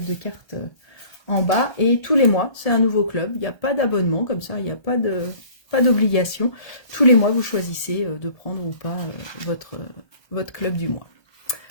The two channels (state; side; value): late; right; 1.3 ms